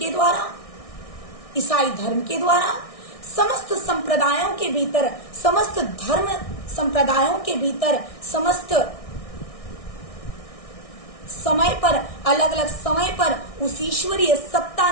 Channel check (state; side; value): late; right; 1.6 ms